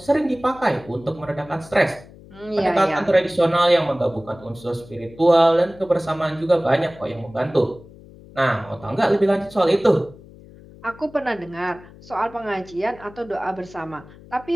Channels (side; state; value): left; noise; hum, 21 dB below the sound